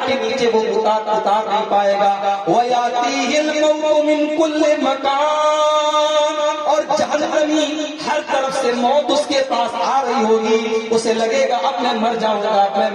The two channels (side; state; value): both; identical; correlation 1.00